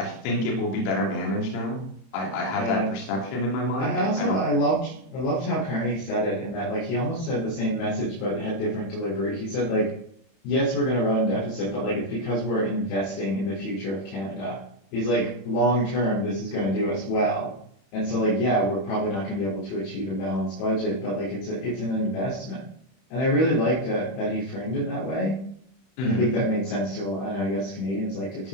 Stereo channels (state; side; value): late; right; 31 ms